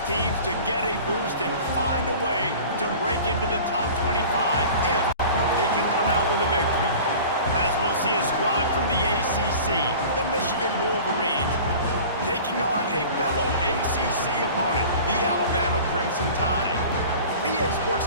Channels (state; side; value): inverted; both; correlation -0.41